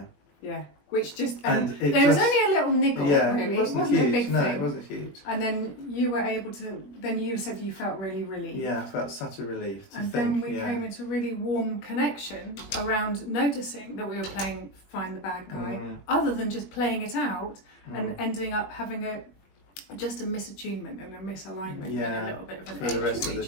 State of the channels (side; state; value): right; late; 21 ms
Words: Yeah. Which just, And it there was just- only a little niggle, Yeah, really. it wasn't a huge. big No, thing. it wasn't huge. And then you were able to, then you said you felt really relieved. Yeah, I felt such a relief to And think, then we came into a really warm connection around noticing that we were playing Find the Bad Guy, other than just playing it out and ending up having just a misattunement and a misalignment and a little bit of an for edge the rest with of the